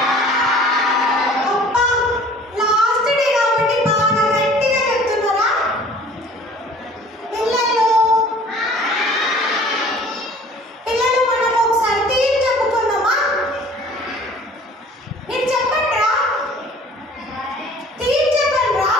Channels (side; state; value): both; normal; correlation 0.49